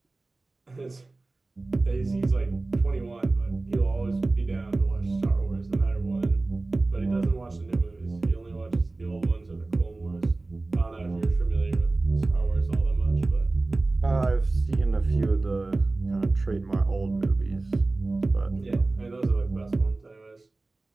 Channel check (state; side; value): quieter; left; 3.2 dB